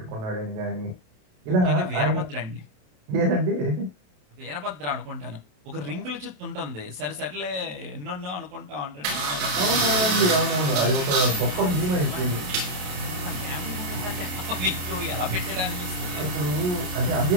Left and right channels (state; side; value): late; left; 27 ms